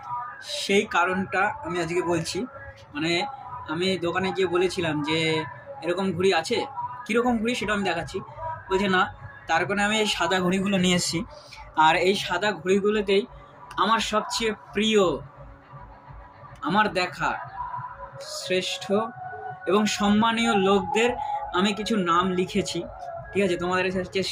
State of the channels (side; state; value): both; identical; correlation 1.00